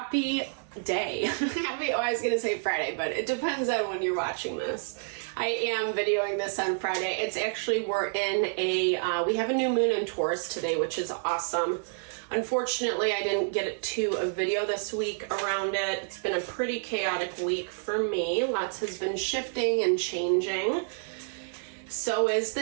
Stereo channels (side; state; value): left; silent; 56 dB below the other